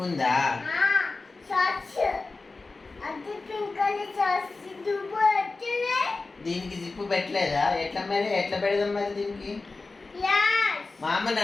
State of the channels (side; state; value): right; quieter; 3.7 dB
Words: ఉందా? దీనికి జిప్పు పెట్టలేదా? ఎట్లా మరి ఎట్లా పెడదాం మరి దీనికి? మా అమ్మని